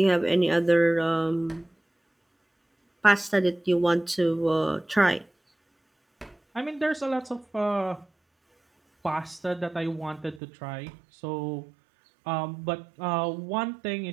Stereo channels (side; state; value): left; drops out; at 10.4 s